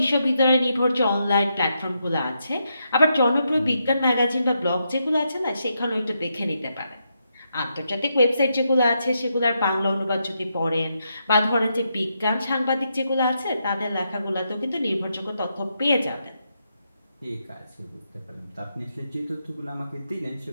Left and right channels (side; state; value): both; inverted; correlation -0.82